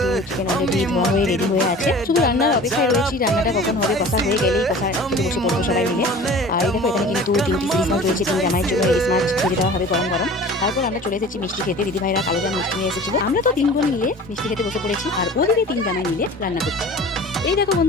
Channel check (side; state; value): both; normal; correlation 0.42